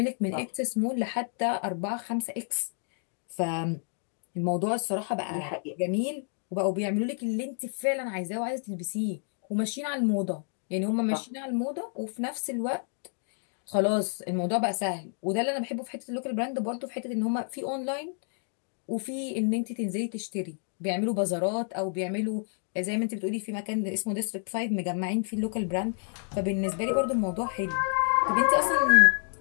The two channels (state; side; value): silent; right; 58 dB below the other